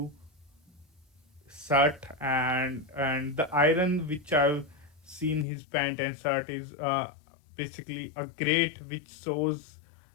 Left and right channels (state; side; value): drops out; right; at 5.5 s